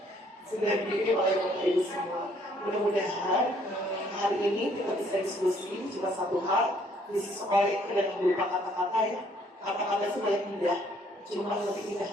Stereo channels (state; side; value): normal; both; correlation 0.64